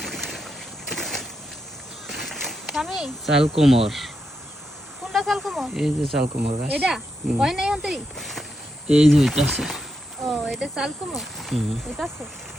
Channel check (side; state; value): both; normal; correlation 0.84